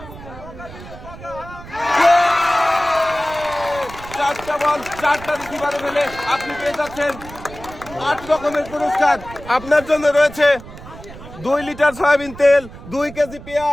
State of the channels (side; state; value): right; noise; rumble, 15 dB below the sound